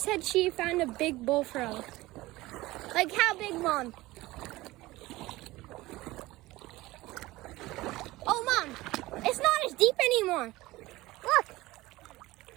said she found a big bullfrog. Like, how big, Mom? Oh, Mom, it's not as deep anymore. Look.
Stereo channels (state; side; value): quieter; left; 18.9 dB